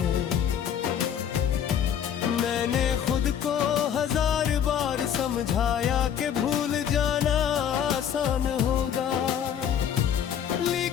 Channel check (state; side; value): quieter; right; 8.9 dB